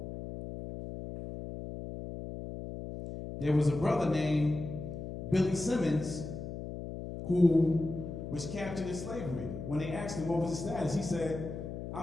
There was a brother named Billy Simmons who was captured in slavery. When they asked him what was his status, he said,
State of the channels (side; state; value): left; noise; hum, 8 dB below the sound